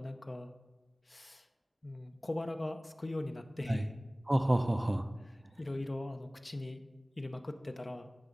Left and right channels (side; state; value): both; normal; correlation 0.98